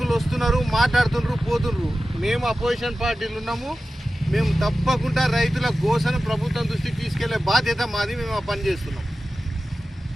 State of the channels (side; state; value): both; normal; correlation 0.94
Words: వస్తున్నారు, మాట్లాడుతున్నారు, పోతున్నారు. మేము అపోజిషన్ పార్టీలు ఉన్నాము. మేము తప్పకుండా రైతుల గోసను ప్రభుత్వం దృష్టికి తీసుకెళ్లే బాధ్యత మాది. మేము ఆ పని చేస్తున్నాం.